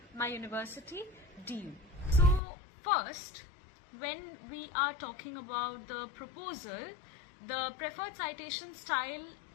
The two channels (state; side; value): drops out; right; at 2.4 s